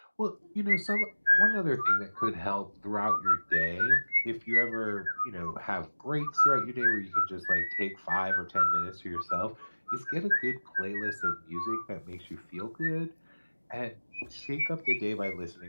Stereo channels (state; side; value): inverted; both; correlation -1.00